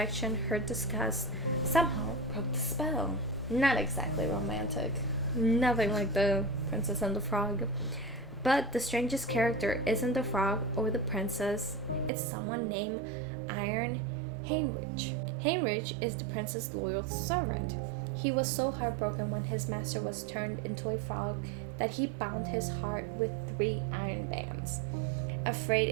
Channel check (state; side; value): drops out; left; at 12.1 s